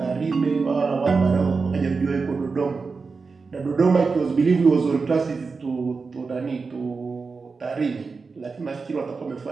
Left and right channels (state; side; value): quieter; left; 4.6 dB